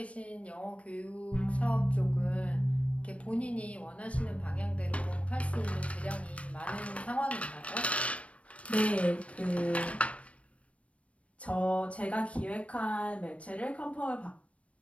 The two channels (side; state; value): right; late; 0.063 ms